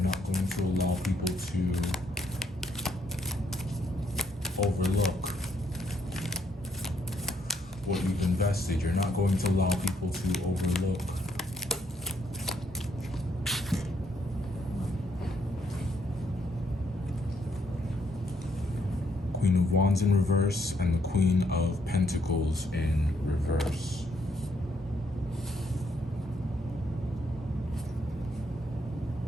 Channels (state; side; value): normal; both; correlation 0.73